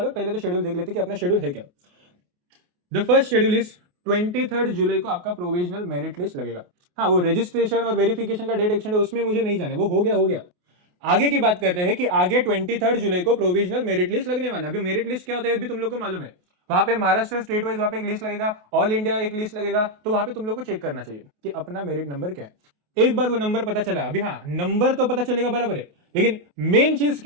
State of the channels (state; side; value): late; left; 28 ms